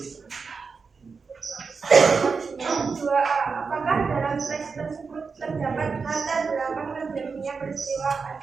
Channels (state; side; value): quieter; left; 5.0 dB